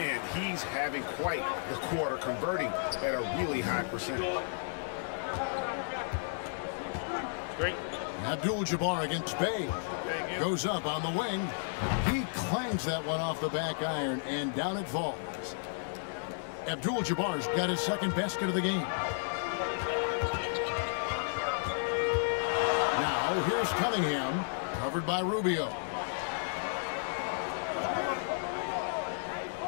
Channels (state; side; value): silent; right; 56 dB below the other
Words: he's having quite the quarter, converting at a really high percentage. Great. Abdul-Jabbar against Bay. Goes up on the wing. He clangs that one off the back iron, and down it falls. Abdul-Jabbar's got his second basket of the game. Now, here's Cunningham, covered by Rubio.